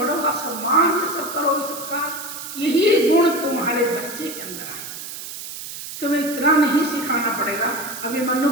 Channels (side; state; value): right; noise; hiss, 10 dB below the sound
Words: का सम्मान, ये सब करोगी, सत्कार, यही गुण तुम्हारे बच्चे के अंदर आए। तुम्हें इतना नहीं सिखाना पड़ेगा। अभी मनु